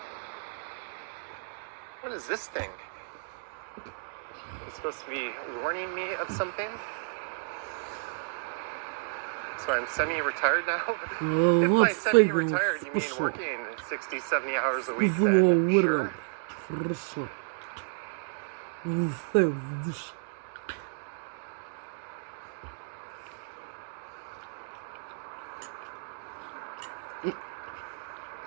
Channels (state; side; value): silent; left; digital silence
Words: What is this thing? It's supposed to be warning me of something? So I'm semi-retired now? If by semi-retired you mean working 60, 70 hours a week, then sure. Хорошо. Заставил задышать.